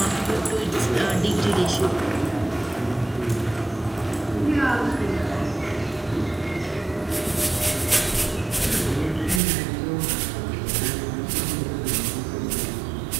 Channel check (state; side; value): drops out; left; at 9.4 s